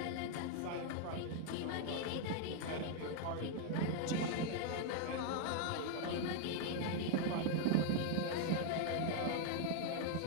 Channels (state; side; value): different; both; correlation 0.00